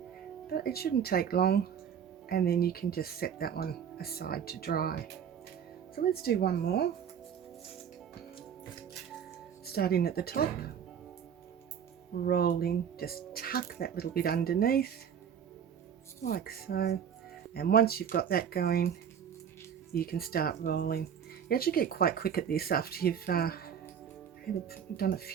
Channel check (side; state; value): left; quieter; 8.1 dB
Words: but it shouldn't take long, and then you can just set that one aside to dry. So let's do one more. Starting at the top, rolling, just tuck that little bit underneath like so, and once you've got that going, you can start rolling. You actually get quite quick at this after you've done a